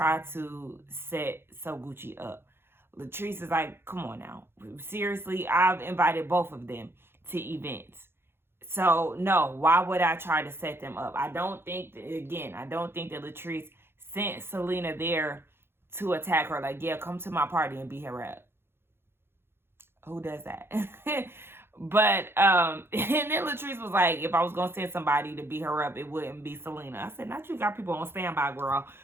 to set So Gucci up? Latrice is like, come on now. Seriously, I've invited both of them to events. So, no, why would I try to set them up? I don't think that Latrice sent Selena there to attack her. Like, yeah, come to my party and beat her up. Who does that? But, and then Latrice was like, if I was going to send somebody to beat her up, it wouldn't be Selena. I said, not you got people on standby, girl.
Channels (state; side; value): late; left; 0.11 ms